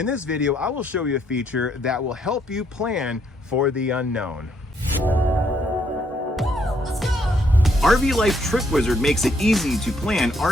this video, I will show you a feature that will help you plan for the unknown. RV Life Trip Wizard makes it easy to plan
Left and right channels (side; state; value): both; normal; correlation 0.71